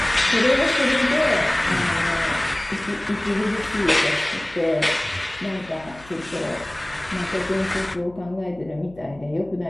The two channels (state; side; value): noise; left; hum, 22 dB below the sound